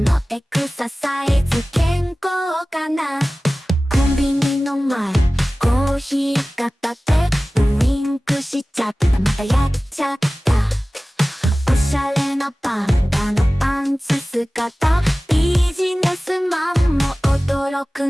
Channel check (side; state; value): both; normal; correlation 0.97